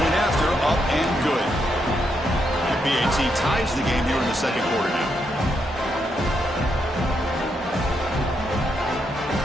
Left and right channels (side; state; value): both; normal; correlation 0.80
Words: after, up and good. And BAT ties the game here in the second quarter now.